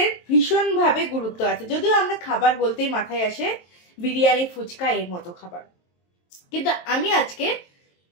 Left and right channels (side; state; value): right; late; 23 ms